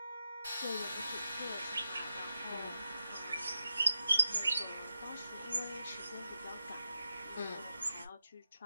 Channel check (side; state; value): both; inverted; correlation -0.89